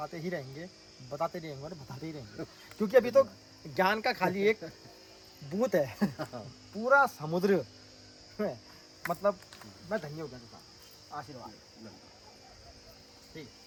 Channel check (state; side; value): identical; both; correlation 1.00